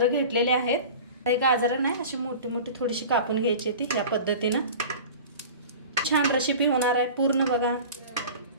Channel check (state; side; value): inverted; both; correlation -0.38